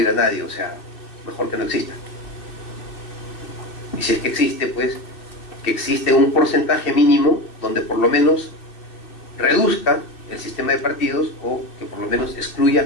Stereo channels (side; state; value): right; late; 2.6 ms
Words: a nadie, o sea, mejor que no exista. Y si es que existe, pues, que existe un porcentaje mínimo donde por lo menos reduzca el sistema de partidos o que por lo menos excluya